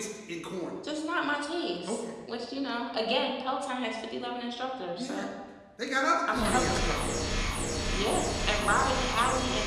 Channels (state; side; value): identical; both; correlation 1.00